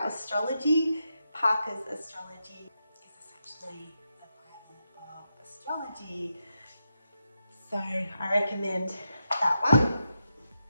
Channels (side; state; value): both; inverted; correlation -0.86